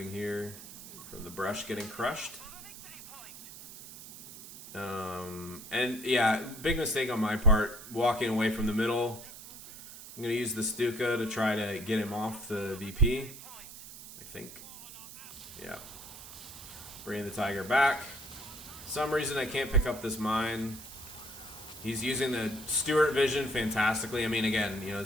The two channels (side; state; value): right; noise; hiss, 14 dB below the sound